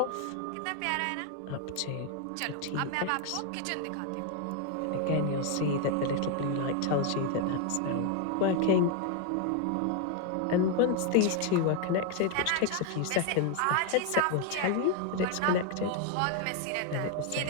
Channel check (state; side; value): different; both; correlation 0.01